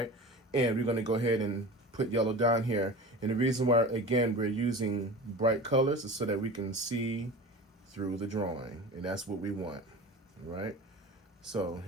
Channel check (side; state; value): both; normal; correlation 0.35